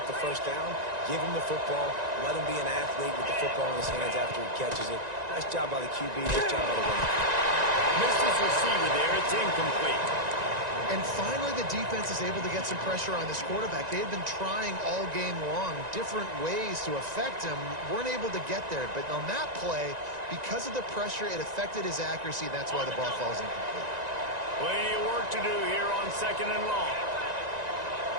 the first down. Give him the football. Let him be an athlete with the football in his hands after he catches it. Nice job by the QB. Nice job by the running back. Missed his receiver there. It's incomplete. And finally, the defense is able to get some pressure on this quarterback. They had been trying all game long different ways to affect him. Weren't able to get there. But on that play, because of the pressure, it affected his accuracy. That's why the ball falls incomplete. Plenty of work to do here on second and long.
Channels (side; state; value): left; late; 1.9 ms